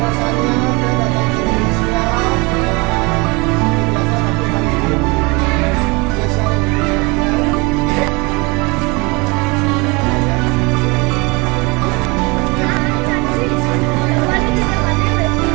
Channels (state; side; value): quieter; left; 26.8 dB